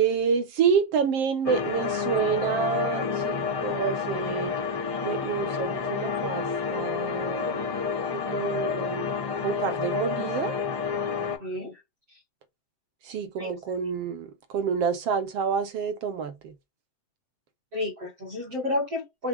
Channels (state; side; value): late; left; 7.6 ms